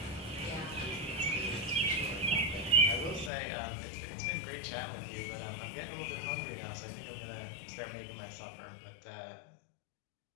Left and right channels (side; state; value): right; drops out; at 3.3 s